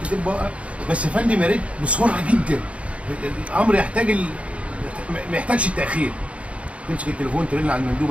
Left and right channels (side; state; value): left; late; 0.063 ms